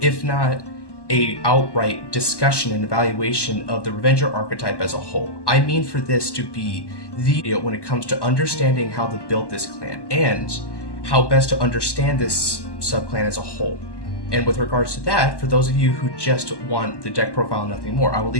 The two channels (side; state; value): right; late; 1.1 ms